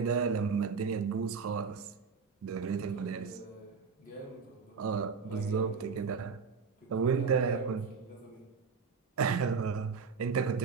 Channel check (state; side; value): quieter; left; 5.5 dB